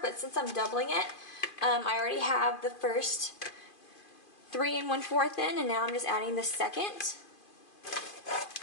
but since I'm doubling it, I already have the first 3 1/4 in, and now I'm just adding the second.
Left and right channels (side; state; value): right; late; 2.5 ms